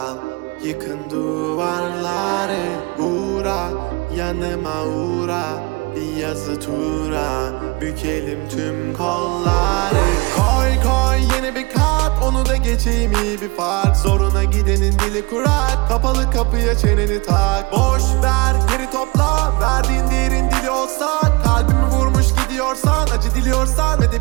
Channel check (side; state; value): left; quieter; 25.7 dB